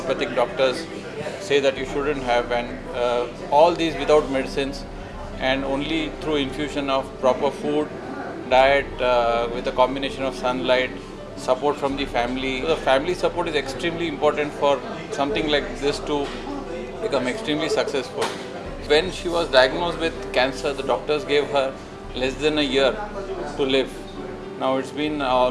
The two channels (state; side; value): identical; both; correlation 1.00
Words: doctors say that you shouldn't have, and all these without medicines, and only through infusion of proper food, diet, with a combination of sunlight, support from the family. So the family support is extremely important for something like this to become extremely successful. When she was diagnosed with cancer, the doctors gave her less than a year to live. Now it's been